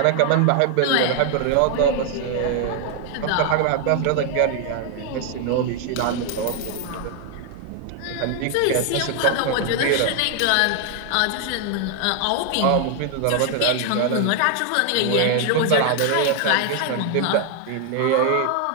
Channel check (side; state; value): both; different; correlation 0.00